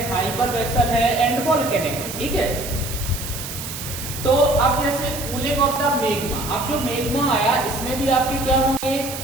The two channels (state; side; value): noise; right; hiss, 8 dB below the sound